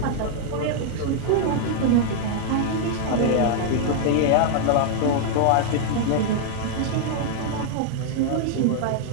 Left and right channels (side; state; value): both; different; correlation 0.00